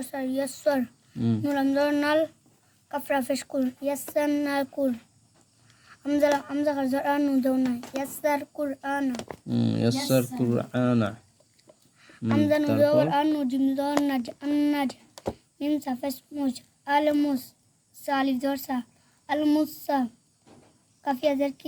সর ইয়াসর নুলাম দর নাল কাফরা পেশ কুর ইয়াসারনাল কুর আমজা খারজার আনু দৌনা ইয়াসার কুরআনা ইয়াসার কুরআনা আমজা নু দর আনু জিম দর নাজ আন্নাজ মিম সাফাস মুজ আলমুস সালিফ দর সা আলমুসা কাফিয়া দের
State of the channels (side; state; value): both; identical; correlation 1.00